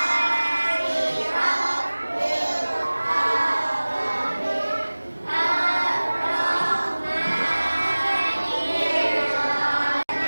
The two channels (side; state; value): both; inverted; correlation -1.00